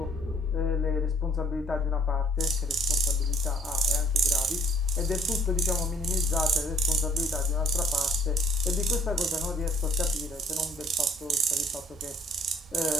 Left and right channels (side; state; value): both; normal; correlation 0.60